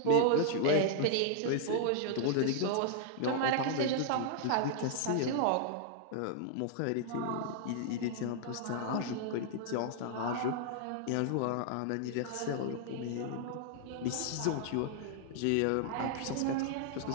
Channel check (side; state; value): both; different; correlation -0.01